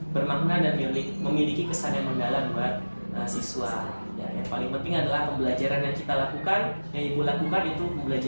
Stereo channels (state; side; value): inverted; both; correlation -1.00